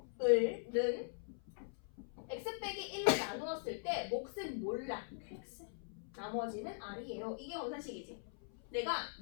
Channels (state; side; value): silent; right; 50 dB below the other